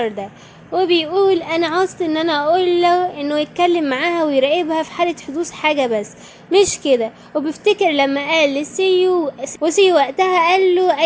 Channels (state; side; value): identical; both; correlation 1.00